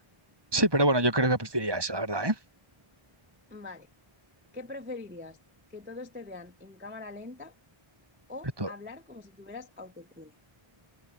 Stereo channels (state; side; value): late; left; 1.2 ms